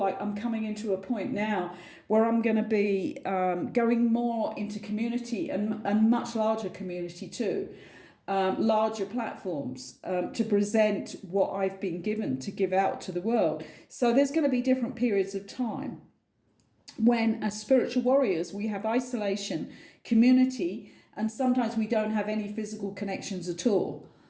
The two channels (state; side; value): identical; both; correlation 1.00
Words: I'm coming into a point now where I'm going to be going more into community, and much larger community too, larger platforms to present what I've been given to give out to the world. So there's going to be different periods of time when, as spiritual warriors, we have isolation, community, and sometimes we don't have any physical connections at all,